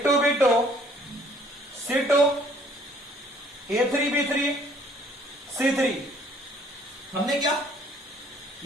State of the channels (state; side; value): normal; both; correlation 0.59